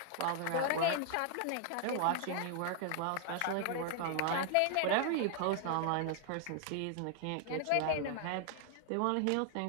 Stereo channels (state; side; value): different; both; correlation 0.00